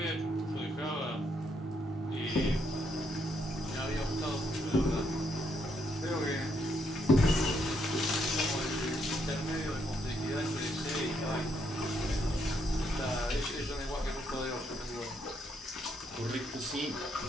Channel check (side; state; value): both; normal; correlation 0.75